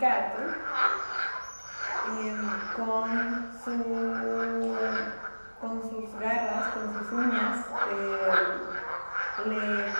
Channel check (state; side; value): inverted; both; correlation -1.00